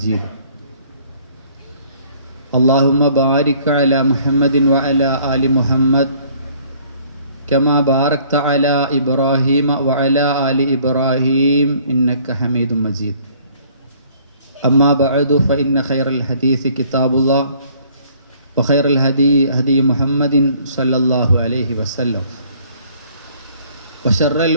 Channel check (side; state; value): both; inverted; correlation -0.58